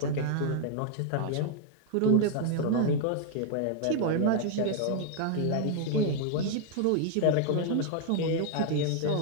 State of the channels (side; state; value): both; different; correlation 0.00